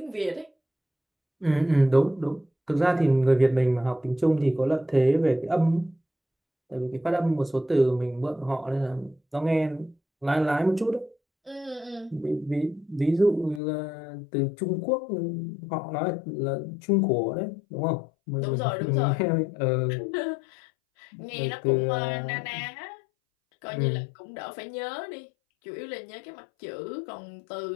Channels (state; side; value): drops out; right; at 13.6 s